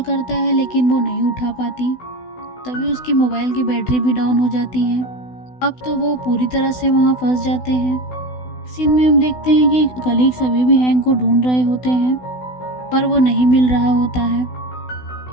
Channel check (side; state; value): right; late; 16 ms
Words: करता है लेकिन वो नहीं उठा पाती। तभी उसकी मोबाइल की बैटरी भी डाउन हो जाती है। अब तो वो पूरी तरह से वहाँ फंस जाते हैं। सीन में हम देखते हैं कि कलीग सभी भी हैंक को ढूंढ रहे होते हैं, पर वो नहीं मिल रहा होता है।